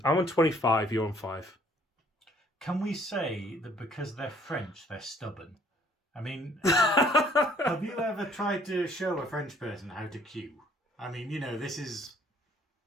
I'm on 25, you're on 5. Can we say that because they're French, they're stubborn? I mean, have you ever tried to show a French person how to queue? I mean, this is...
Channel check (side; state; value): both; normal; correlation 0.61